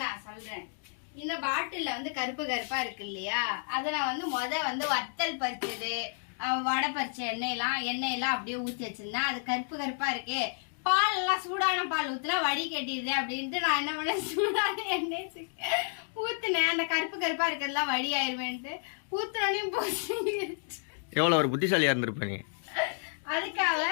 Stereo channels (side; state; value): right; silent; 57 dB below the other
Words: நான் சொல்றேன். இந்த பாட்டில வந்து கருப்பு கருப்பா இருக்கு இல்லையா, அத நான் வந்து வத்தல் பறிச்சது, வடை பறிச்ச எண்ணெயெல்லாம் அப்படியே ஊத்தி வச்சிருந்தேன். அது கருப்பு கருப்பா இருக்கு. பால் எல்லாம் சூடான பால் ஊத்துனா வடி கட்டிடுது அப்படின்ட்டு நான் என்ன பண்ணேன், சூடான எண்ணெய் ஊத்துனேன். அந்த கருப்பு கருப்பா இருக்கிறதுலாம் வடி ஆயிருவேன்ட்டு ஊத்துனோடனே போச்சு. எவ்வளவு ஒரு புத்திசாலியா இருந்திருப்ப நீ. அதுக்காக